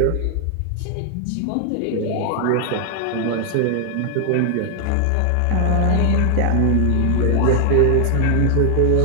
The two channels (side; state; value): both; different; correlation 0.00